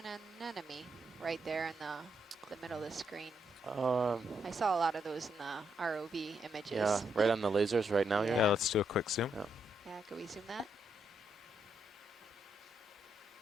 anemone right there in the middle of the screen? I saw a lot of those in the ROV images. Yeah, right on the lasers right now. Yeah. Yeah, let's do a quick zoom. Yeah. Yeah, can we zoom that?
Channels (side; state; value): both; normal; correlation 0.79